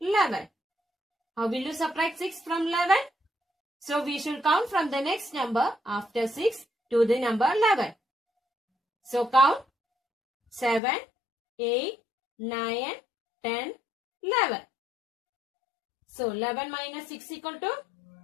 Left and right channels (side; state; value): right; drops out; at 10.8 s